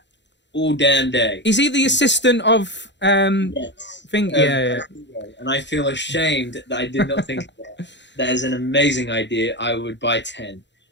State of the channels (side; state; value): right; late; 0.52 ms